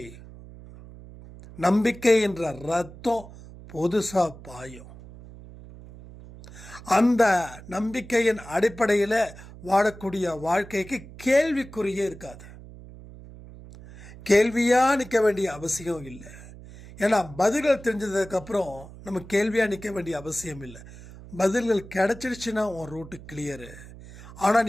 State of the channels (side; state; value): right; noise; hum, 17 dB below the sound